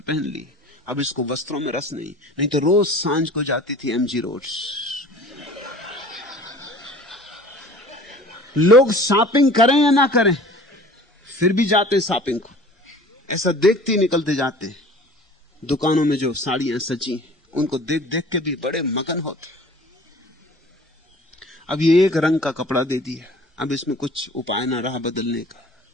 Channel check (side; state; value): both; normal; correlation 0.45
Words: पहन ली, अब इसको वस्त्रों में रस नहीं। नहीं तो रोज सांझ को जाती थी एमजी रोड। लोग शॉपिंग करें या ना करें, फिर भी जाते शॉपिंग को। ऐसा देखते ही निकलते जाते। दुकानों में जो साड़ियां सजी उनको देख देख के भी बड़े मगन होते। अब ये एक रंग का कपड़ा दे दिया, अब इसमें कुछ उपाय ना रहा बदलने का।